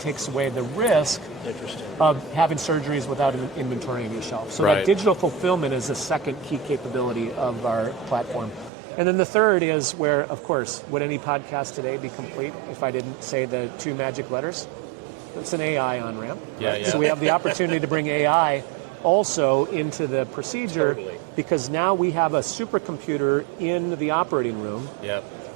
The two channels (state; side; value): drops out; left; at 8.7 s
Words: away the risk of having surgeries without an inventory on your shelf. So that digital fulfillment is the second key capability of our platform. And then the third is where, of course, would any podcast today be complete if I didn't say the two magic letters? It's an AI on-ramp. Yeah. So we have the opportunity to bring AI also into the procedure because now we have a supercomputer in the operating room,